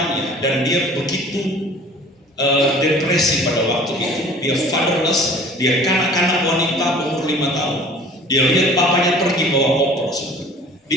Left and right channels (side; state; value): both; normal; correlation 0.47